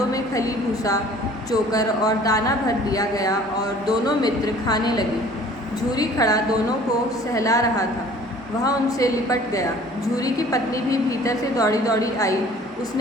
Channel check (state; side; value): normal; both; correlation 0.51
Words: में खली, भूसा, चोकर और दाना भर दिया गया और दोनों मित्र खाने लगे. झूरी खड़ा दोनों को सहला रहा था. वह उनसे लिपट गया. झूरी की पत्नी भी भीतर से दौड़ी दौड़ी आई.